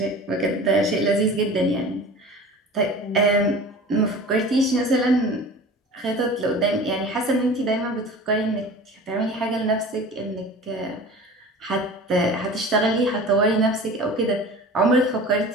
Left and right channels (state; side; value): normal; both; correlation 0.39